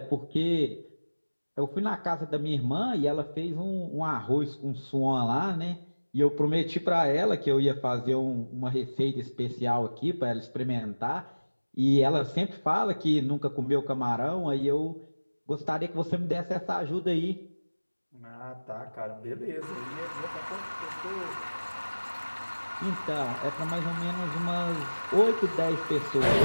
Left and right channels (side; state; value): both; inverted; correlation -1.00